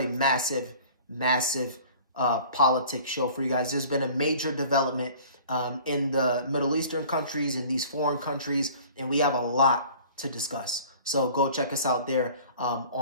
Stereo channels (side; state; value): both; inverted; correlation -0.46